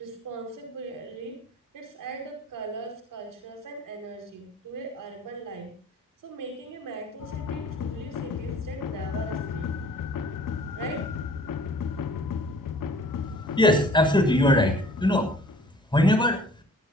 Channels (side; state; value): both; normal; correlation 0.52